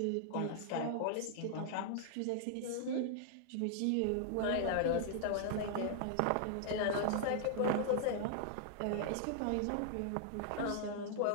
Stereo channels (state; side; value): different; both; correlation -0.01